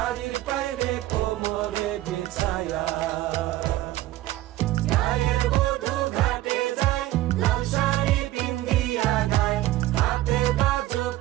পায়ে কোমরে বিছায়া গায়ের বধূ ঘাটে যায় লাল শাড়ি পিন্দিয়া গায় হাতে বাজো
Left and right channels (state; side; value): quieter; left; 15.9 dB